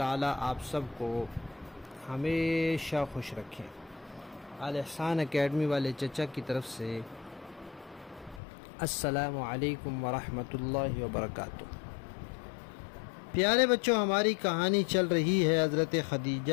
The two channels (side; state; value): right; drops out; at 8.4 s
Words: آپ سب کو ہمیشہ خوش رکھیں۔ الاحسان اکیڈمی والے چچا کی طرف سے السلام علیکم ورحمۃ اللہ وبرکاتہ۔ پیارے بچوں، ہماری کہانی چل رہی ہے حضرت